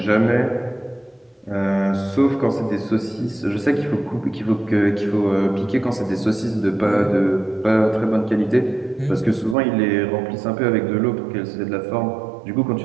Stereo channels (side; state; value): left; drops out; at 9.6 s